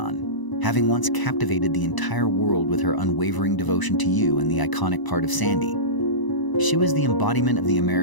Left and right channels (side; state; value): right; late; 1.0 ms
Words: having once captivated the entire world with her unwavering devotion to you and the iconic part of Sandy. She was the embodiment of the